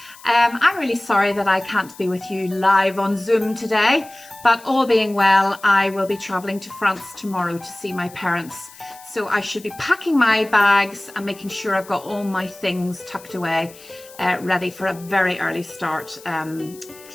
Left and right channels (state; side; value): noise; left; hiss, 21 dB below the sound